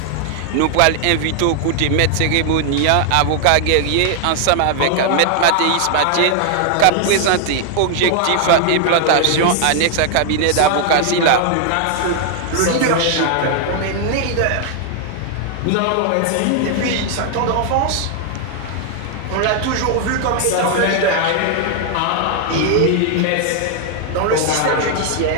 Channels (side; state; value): both; different; correlation 0.00